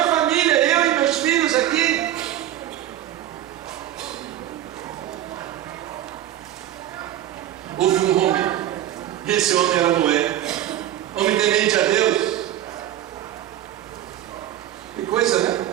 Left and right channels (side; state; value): left; quieter; 12.4 dB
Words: família, eu e meus filhos aqui. Houve um homem, e esse homem era Noé, homem temente a Deus. Que coisa, né?